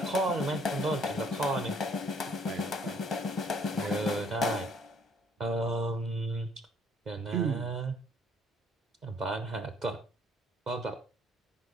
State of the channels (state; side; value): normal; both; correlation 0.61